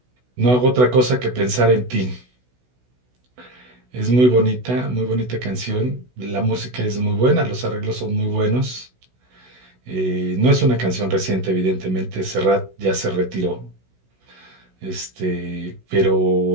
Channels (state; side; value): late; left; 16 ms